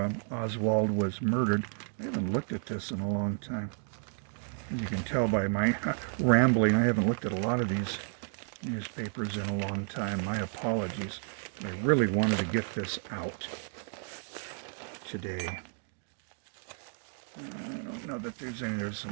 Oswald was murdered. I haven't looked at this in a long time. As you can tell by my rambling, I haven't looked at a lot of these newspapers in a long time. My apologies. I really wanted to get this out today. I don't know that there's any. There's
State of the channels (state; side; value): silent; left; 56 dB below the other